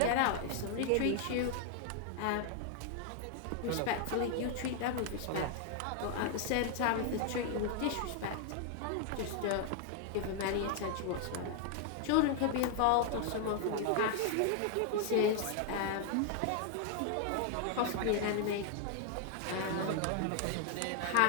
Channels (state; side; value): different; both; correlation 0.00